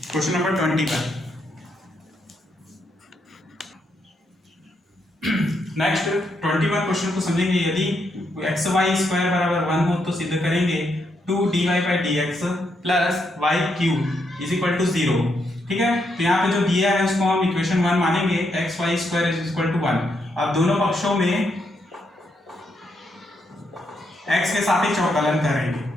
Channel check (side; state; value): both; normal; correlation 0.79